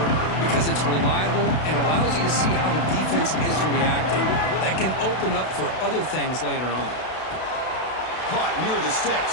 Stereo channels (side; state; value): right; late; 32 ms